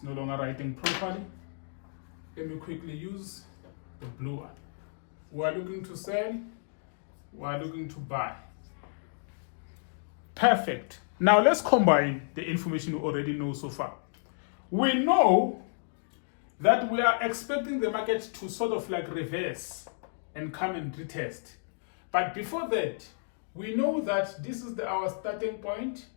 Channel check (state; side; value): silent; right; digital silence